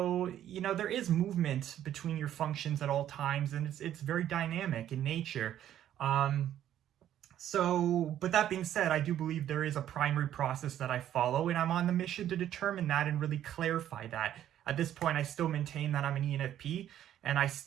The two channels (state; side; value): quieter; left; 11.3 dB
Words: there is movement between your functions at all times, and it's very dynamic in nature. But that being said, I do believe there is a primary process that I follow, and I'm on the mission to determine that and really clarify that. At this point, I still maintain that I'm an ENFP, and I